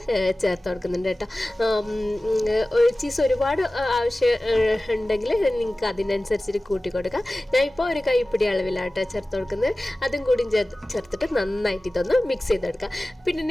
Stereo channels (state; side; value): normal; both; correlation 0.97